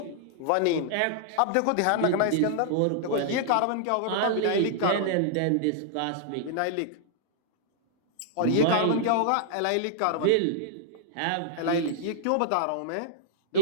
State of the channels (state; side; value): different; both; correlation -0.01